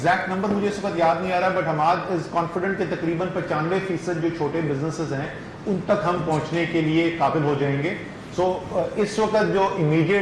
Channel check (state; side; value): identical; both; correlation 1.00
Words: नंबर मुझे इस वक्त याद नहीं आ रहा, बट हम आज इज कॉन्फिडेंट कि तकरीबन 95% जो छोटे बिजनेसेस हैं उन तक हम पहुंचने के लिए काबिल हो जाएंगे। सो इस वक्त जो